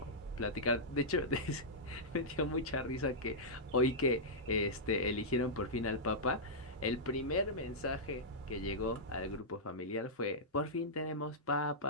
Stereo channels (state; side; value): normal; both; correlation -0.11